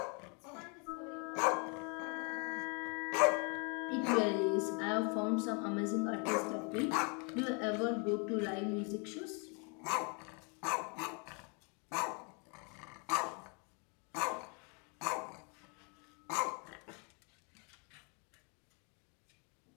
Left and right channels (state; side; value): quieter; right; 34.5 dB